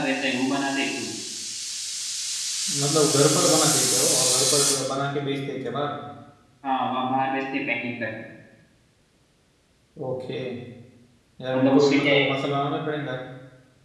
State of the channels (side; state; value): both; identical; correlation 1.00